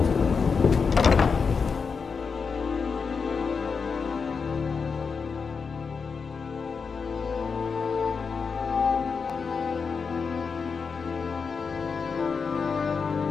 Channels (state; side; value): quieter; right; 5.4 dB